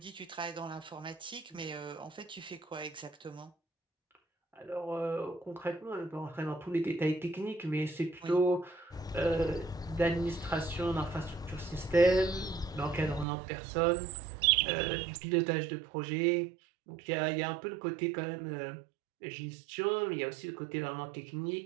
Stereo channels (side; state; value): left; drops out; at 13.2 s